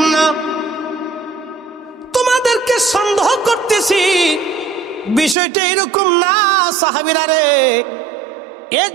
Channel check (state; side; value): drops out; left; at 5.4 s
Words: না। তোমাদেরকে সন্দেহ করতেছি, বিষয়টা এরকম না সাহাবীরা রে।